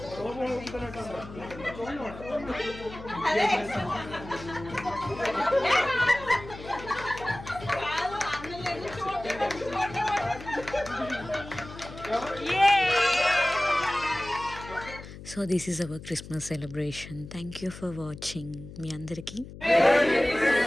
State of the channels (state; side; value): noise; left; hum, 14 dB below the sound